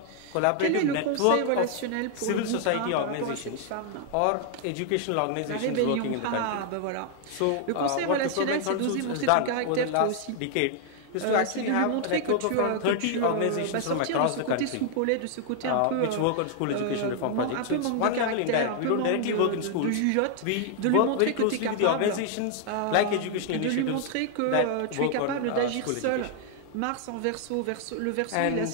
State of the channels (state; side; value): different; both; correlation 0.00